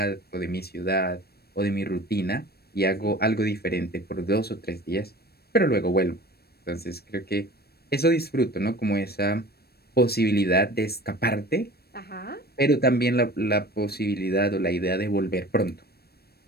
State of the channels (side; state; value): right; late; 0.46 ms